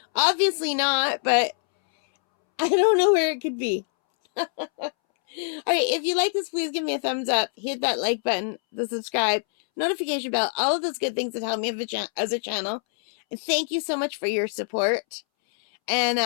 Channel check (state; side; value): silent; right; 62 dB below the other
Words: Obviously not, but I don't know where it could be. All right, if you like this, please give me a thumbs up. Hit that like button, the subscribe, notification bell, all of those good things that help me as a channel. And thank you so much for your support.